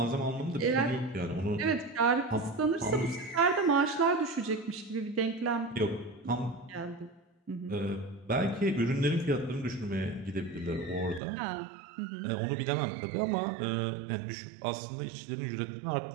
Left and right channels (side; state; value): left; drops out; at 11.2 s